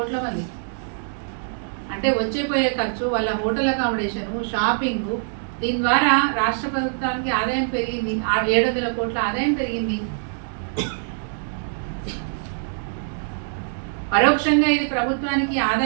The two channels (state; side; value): silent; left; 63 dB below the other